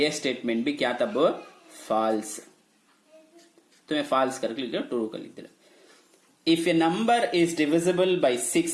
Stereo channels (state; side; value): identical; both; correlation 1.00